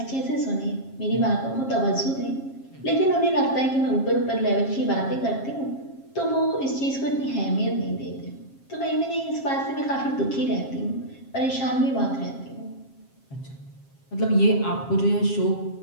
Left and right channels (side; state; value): right; late; 7.4 ms